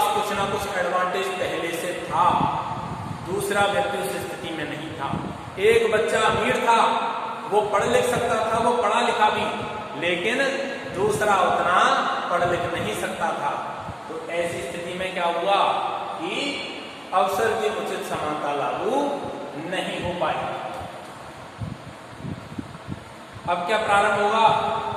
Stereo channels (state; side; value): identical; both; correlation 1.00